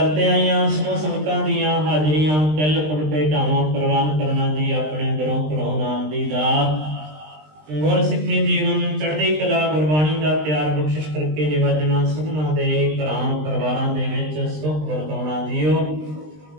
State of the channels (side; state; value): left; late; 20 ms